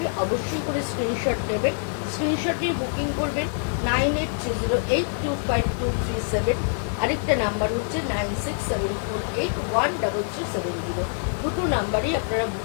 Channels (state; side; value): silent; right; digital silence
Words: অবশ্যই করে স্ক্রিনশট নেবেন, স্ক্রিনশট নিয়ে বুকিং করবেন 9830825237। আরেকটা নাম্বার হচ্ছে 9674813370। দুটো নাম্বারই আপনারা